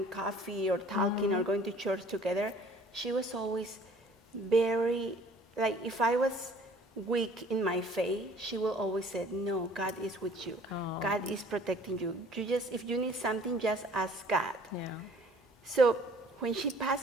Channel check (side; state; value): both; normal; correlation 0.53